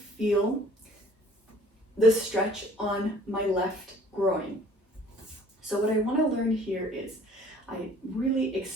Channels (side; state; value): both; normal; correlation 0.53